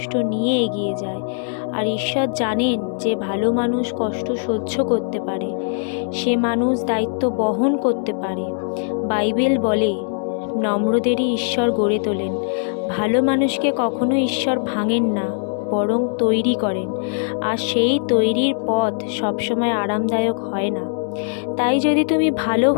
নিয়ে এগিয়ে যায়। আর ঈশ্বর জানেন যে ভালো মানুষ কষ্ট সহ্য করতে পারে, সে মানুষ দায়িত্ব বহন করতে পারে। বাইবেল বলে, নম্রদেরই ঈশ্বর গড়ে তোলেন। ভালো মানুষকে কখনো ঈশ্বর ভাঙেন না, বরং তৈরি করেন। আর সেই তৈরির পথ সবসময় আরামদায়ক হয় না। তাই যদি তুমি ভালো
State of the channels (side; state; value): right; silent; digital silence